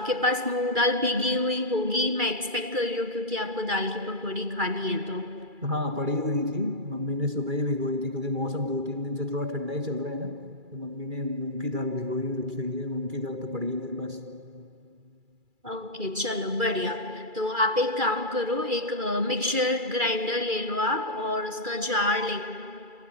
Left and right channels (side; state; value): left; late; 2.3 ms